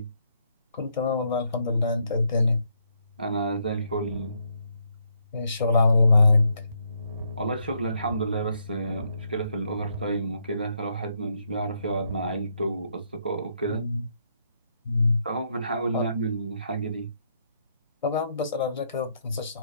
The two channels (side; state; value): both; inverted; correlation -0.75